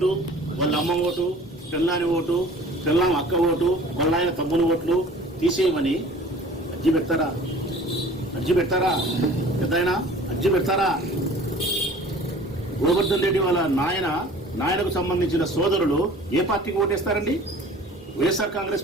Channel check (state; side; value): normal; both; correlation 0.47